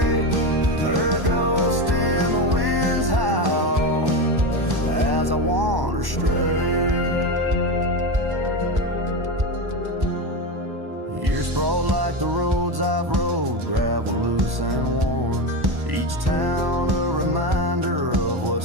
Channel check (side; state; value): left; late; 1.1 ms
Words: her ghost in the winds howl as I wander stray. Years sprawl like the roads I've rode, gravel loose and worn, each town a reminder of